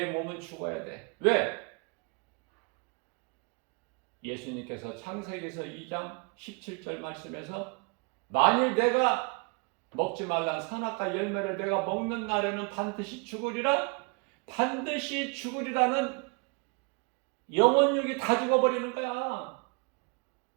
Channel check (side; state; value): left; quieter; 32.2 dB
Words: 몸은 죽어야 돼. 왜? 예수님께서 창세기에서 2장 17절 말씀에서 만일 내가 먹지 말란 선악과 열매를 내가 먹는 날에는 반드시 죽으리라. 반드시 죽으리라는 영혼육이 다 죽어버리는 거야.